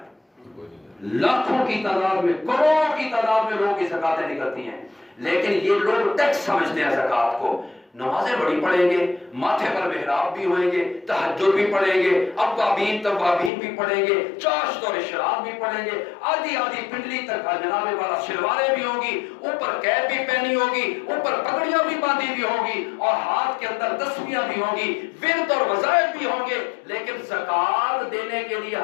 لاکھوں کی تعداد میں، کروڑوں کی تعداد میں لوگوں کی زکوٰۃیں نکلتی ہیں، لیکن یہ لوگ ٹیکس سمجھتے ہیں زکوٰۃ کو۔ نمازیں بڑی پڑھیں گے، ماتھے پر محراب بھی ہوئیں گے، تہجد بھی پڑھیں گے، اوابین توابین بھی پڑھیں گے، چاشت اور اشراق بھی پڑھیں گے، آدھی آدھی پنڈلی تک جناب والا شلواریں بھی ہوں گی، اوپر کیپ بھی پہنی ہوگی، اوپر پگڑیاں بھی باندھی بھی ہوں گی، اور ہاتھ کے اندر تسبیحاں بھی ہوں گی، ورد اور وظائف بھی ہوں گے، لیکن زکوٰۃ دینے کے لیے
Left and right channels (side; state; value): right; drops out; at 13.5 s